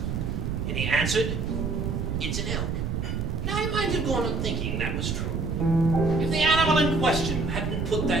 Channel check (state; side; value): noise; right; rumble, 2 dB below the sound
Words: And he answered, it's an elk. Now I might have gone on thinking that was true, if the animal in question hadn't put